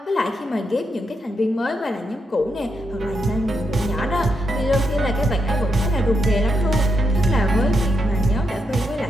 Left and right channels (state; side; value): normal; both; correlation 0.82